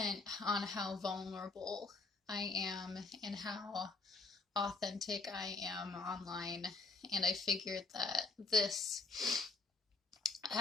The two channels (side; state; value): right; quieter; 3.8 dB